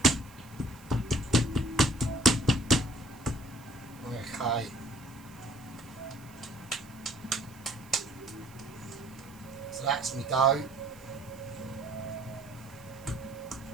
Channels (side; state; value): right; noise; hiss, 24 dB below the sound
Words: Okay. So that's my dough.